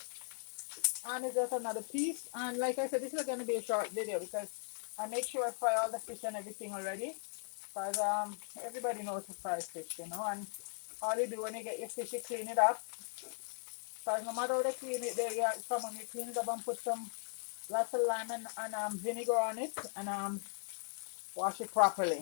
And it's just another piece. And like I said, this is going to be a short video because I make sure I fry all the fish and everything already. Because everybody knows to fry fish, you know. And all you do when you get your fish, you clean it up. Because no matter how they clean it, someone you clean it up and put some lots of lime and vinegar on it, and wash it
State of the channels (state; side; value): silent; right; digital silence